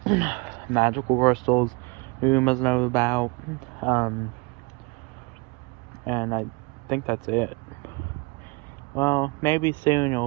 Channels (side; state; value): left; quieter; 28.4 dB